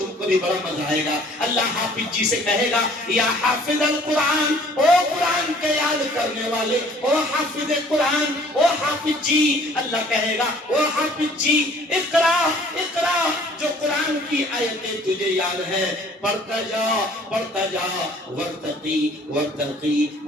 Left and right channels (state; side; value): normal; both; correlation 0.55